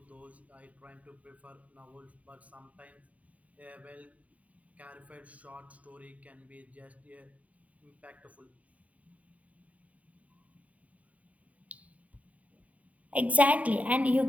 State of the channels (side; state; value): left; late; 0.069 ms